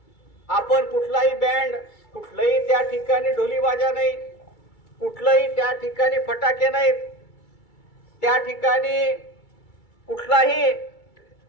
आपण कुठलाही बँड, कुठलाही त्या ठिकाणी ढोलीबाजा नाही, कुठलाही त्या ठिकाणी फटाके नाहीत, त्या ठिकाणी कुठलाही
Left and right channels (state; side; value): late; right; 2.3 ms